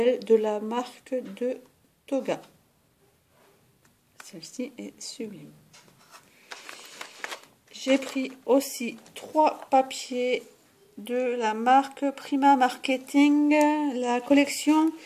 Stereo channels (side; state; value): both; identical; correlation 1.00